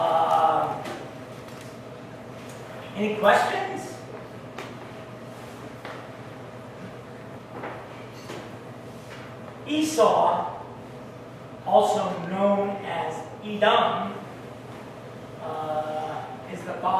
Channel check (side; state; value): both; identical; correlation 1.00